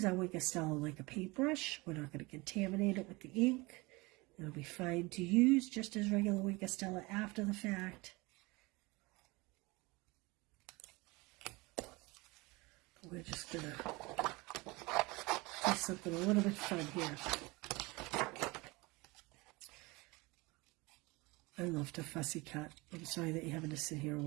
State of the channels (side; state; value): left; quieter; 24.2 dB